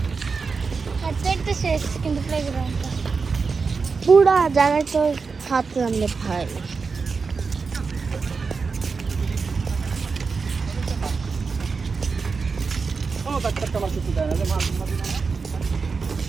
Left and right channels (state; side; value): quieter; left; 4.9 dB